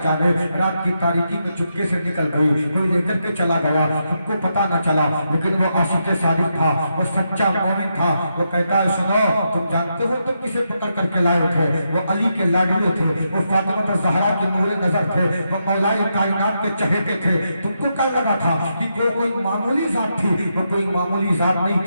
جانے رات کی تاریکی میں چپکے سے نکل گئی، کوئی لے کر کے چلا گیا، ہم کو پتا نہ چلا، لیکن وہ عاشق صادق تھا، وہ سچا مومن تھا، وہ کہتا ہے سنو تم جانتے ہو تم کسے پکڑ کر کے لائے تھے؟ وہ علی کے لاڈلے تھے، وہ فاطمہ زہرا کے نور نظر تھے، وہ مولائے کائنات کے چہیتے تھے، تم کو کیا لگا تھا کہ وہ کوئی معمولی ذات تھی؟ وہ کوئی معمولی ذات نہیں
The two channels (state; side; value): inverted; both; correlation -0.83